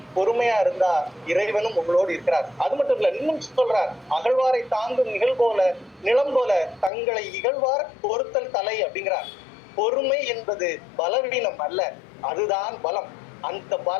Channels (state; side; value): drops out; right; at 6.9 s